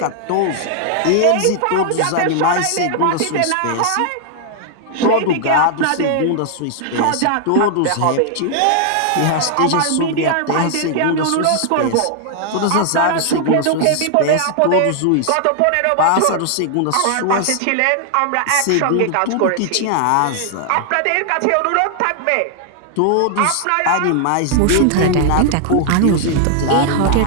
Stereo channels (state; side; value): different; both; correlation 0.00